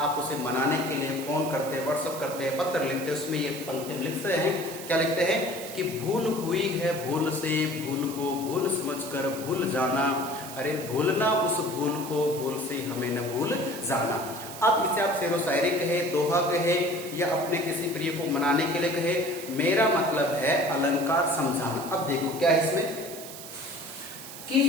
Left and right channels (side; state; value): right; noise; hiss, 12 dB below the sound